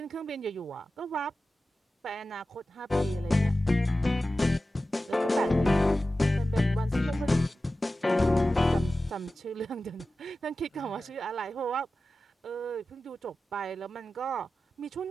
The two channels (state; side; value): normal; both; correlation 0.94